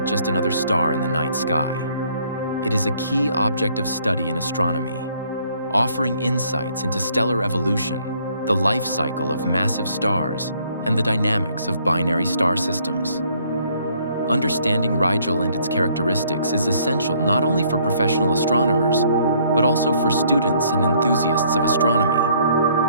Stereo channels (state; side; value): inverted; both; correlation -0.64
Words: just another star in the night sky. It is a key object of study in astronomy, offering insights into stellar evolution, the life cycle of massive stars, and the dynamics of binary star systems. Understanding Rigel and its characteristics is essential not only for professional astronomers, but also for students and enthusiasts of